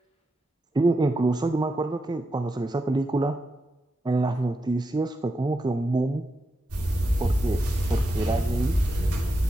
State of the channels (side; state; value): both; normal; correlation 0.87